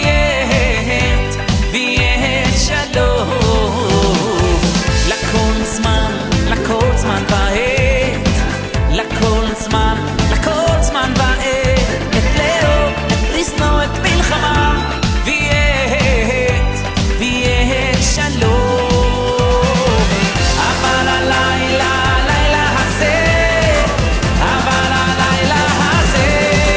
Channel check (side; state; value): both; identical; correlation 1.00